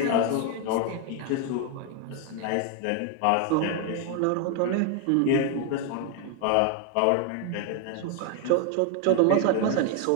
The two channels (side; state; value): both; different; correlation 0.00